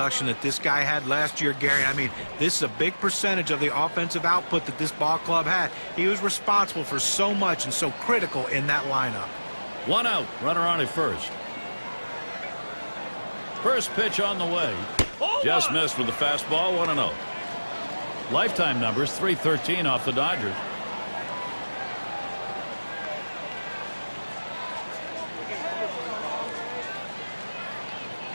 that this guy had last year, Gary. I mean, this is a big percentage of the offensive output that this ball club had. He was responsible for so much and so critical in that lineup. One out, runner on at first. First pitch on the way. Just missed with the fastball, 1-0. Lifetime numbers, 313 off the Dodgers.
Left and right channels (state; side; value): inverted; both; correlation -1.00